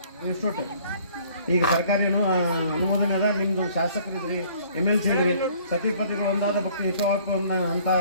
ಇನ್ಸ್ಟಿಟ್ಯೂಟ್. ಈಗ ಸರ್ಕಾರಿ ಅನುಮೋದನೆ ಅದ, ನಿಮ್ಮದು ಶಾಸಕರಿದ್ರಿ, MLC ಇದ್ರಿ, ಸತಿಪತಿಗಳು ಒಂದಾದ ಭಕ್ತಿ ಹಿತವಾಗ್ತು ಅಂತ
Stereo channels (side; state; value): both; inverted; correlation -0.57